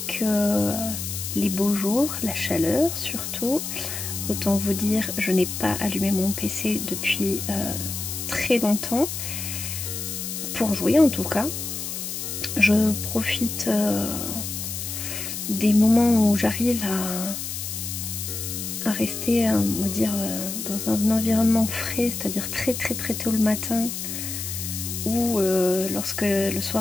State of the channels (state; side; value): noise; left; hiss, 5 dB below the sound